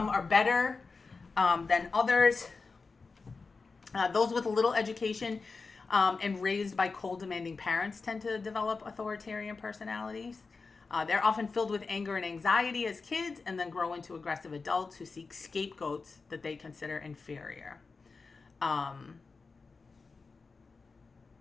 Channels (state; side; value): quieter; right; 4.4 dB